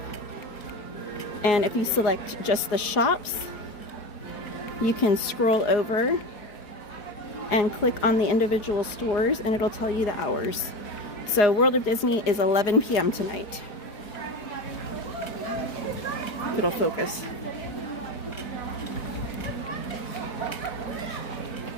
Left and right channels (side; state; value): right; late; 4.8 ms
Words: and if you select just the shops, you can scroll over and click on the individual stores and it'll tell you the hours. So World of Disney is 11 p.m. tonight. It'll focus.